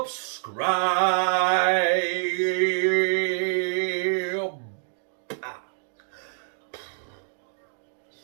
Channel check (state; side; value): silent; left; digital silence